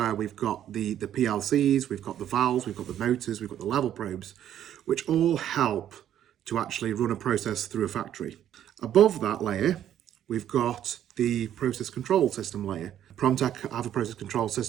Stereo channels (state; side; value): quieter; left; 10.8 dB